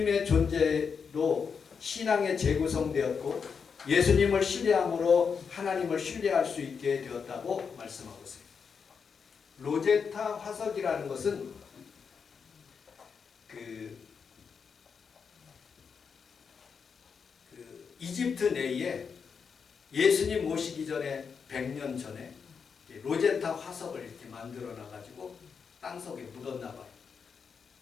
존재로 신앙에 재구성되었고 예수님을 신뢰함으로 하나님을 신뢰할 수 있게 되었다고 말씀하고 있어요. 로제타 화석이라는 것은 이집트 내에 예수님 오시기 전에 100년 전에 로제타 화석을 이렇게 만들어 놔가지고 땅속에 묻었나 봐요.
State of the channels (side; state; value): right; quieter; 6.1 dB